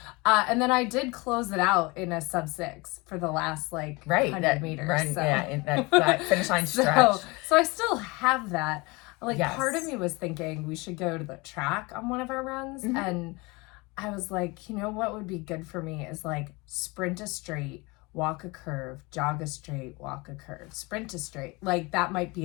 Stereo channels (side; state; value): right; quieter; 25.4 dB